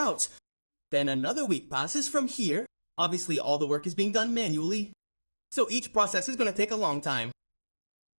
Then another week passes from here. Obviously, all the work is being done manually, so each process is going to take a long time.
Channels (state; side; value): inverted; both; correlation -1.00